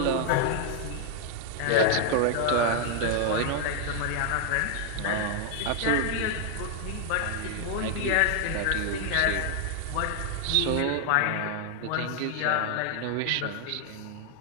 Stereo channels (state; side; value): different; both; correlation 0.00